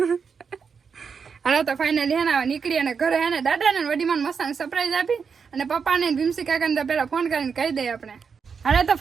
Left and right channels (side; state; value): left; quieter; 6.0 dB